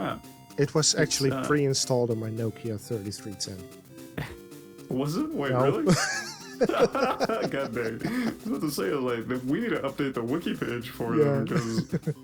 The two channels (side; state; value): both; identical; correlation 1.00